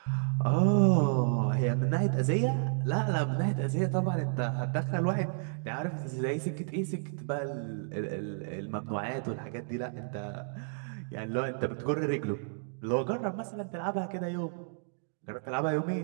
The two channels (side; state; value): left; silent; digital silence